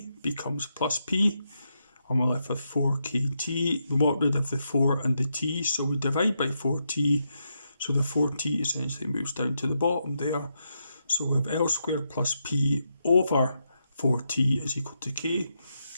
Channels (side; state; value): both; inverted; correlation -0.83